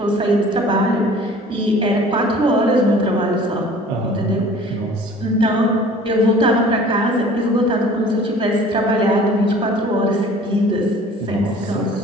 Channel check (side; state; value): both; normal; correlation 0.48